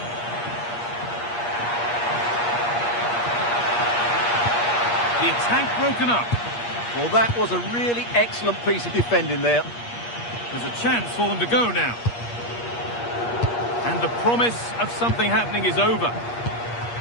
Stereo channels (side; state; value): right; late; 8.5 ms